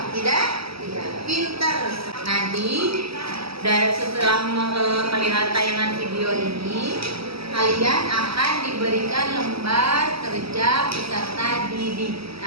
Tidak? Pinter. Nanti setelah melihat tayangan video ini, kalian akan diberikan lembar kerja peserta didik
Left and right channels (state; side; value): late; left; 0.76 ms